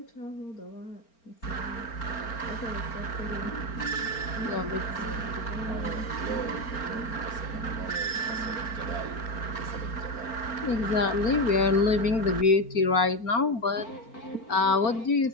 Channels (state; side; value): late; right; 4.4 ms